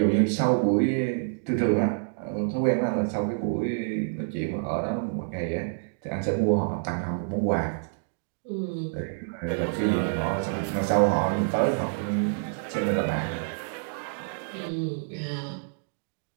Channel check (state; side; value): silent; left; digital silence